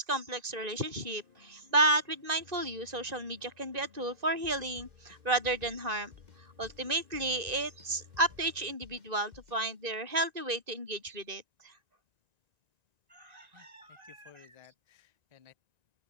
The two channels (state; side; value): late; left; 1.9 ms